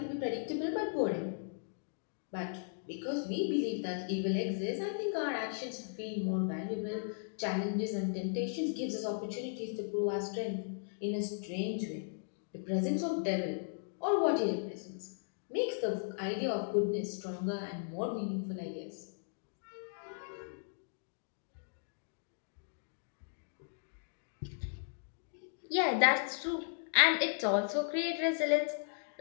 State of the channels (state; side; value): silent; right; digital silence